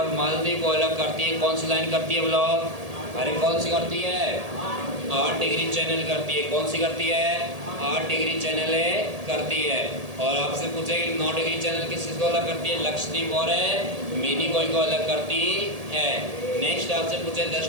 मालदीव को अलग करती है। कौन सी लाइन करती है बोलो? अरे कौन सी करती है? 8 डिग्री चैनल करती है। कौन सी करती है? 8 डिग्री चैनल करती है। और आपसे पूछे कि 9 डिग्री चैनल किस को अलग करती है? लक्षद्वीप और मिनिकॉय को अलग करती है। नेक्स्ट आपसे पूछे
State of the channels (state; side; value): late; left; 1.8 ms